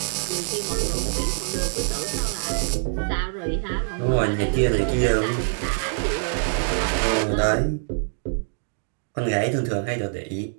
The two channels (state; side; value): silent; left; digital silence